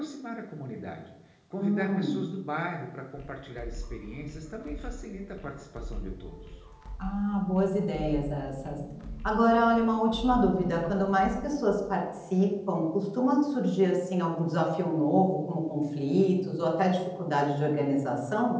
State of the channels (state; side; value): identical; both; correlation 1.00